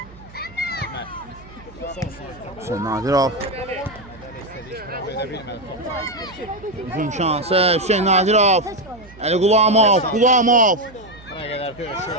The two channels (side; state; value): right; noise; hum, 21 dB below the sound